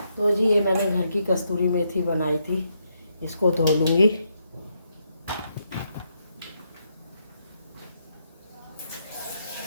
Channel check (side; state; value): both; inverted; correlation -0.78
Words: तो जी ये मैंने घर की कस्तूरी मेथी बनाई थी, इसको धो लूँगी।